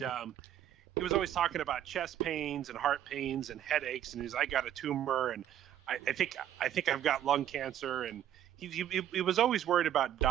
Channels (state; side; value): quieter; left; 11.0 dB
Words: he was always talking about chest pains and heart pains and headaches, and I got a tumor, and I think I've got lung cancer, and he was always worried about